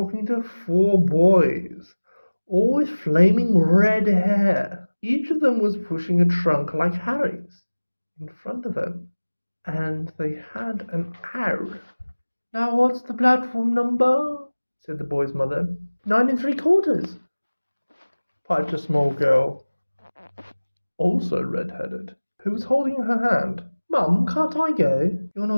to 4 boys, all with flaming red hair. Each of them was pushing a trunk like Harry's in front of them, and they had an owl. Now what's the platform number? Said the boy's mother. 9 3/4, piped a small girl, also red-headed, who was holding her hand. Mum, can't I go? You're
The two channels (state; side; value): inverted; both; correlation -1.00